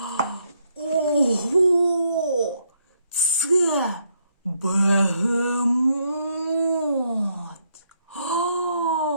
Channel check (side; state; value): both; inverted; correlation -0.74